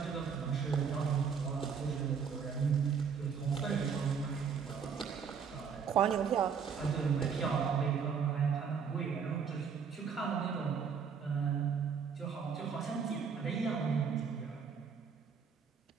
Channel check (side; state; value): left; quieter; 6.5 dB